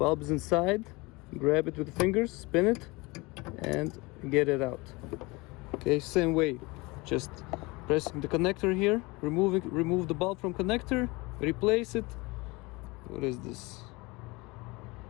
is inside, grab it with the fingers, spin it and get it out. Okay, same way, just pressing the connector here, remove the bulb from connector, replace it. What is this?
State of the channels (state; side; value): quieter; right; 24.4 dB